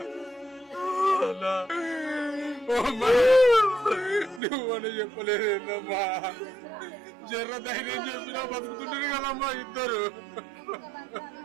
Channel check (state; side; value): drops out; left; at 4.4 s